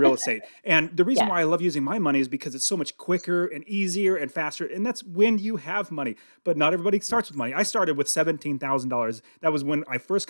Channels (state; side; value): inverted; both; correlation -1.00